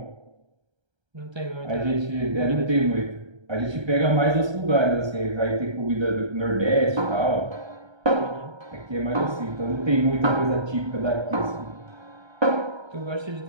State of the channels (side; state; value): left; late; 1.3 ms